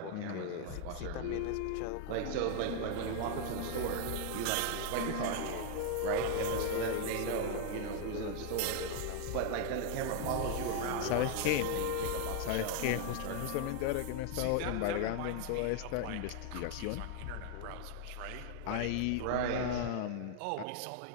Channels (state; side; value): different; both; correlation 0.00